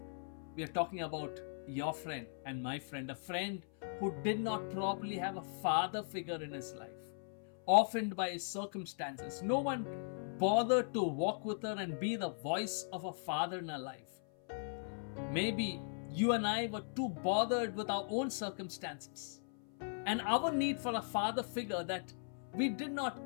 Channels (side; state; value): right; silent; 52 dB below the other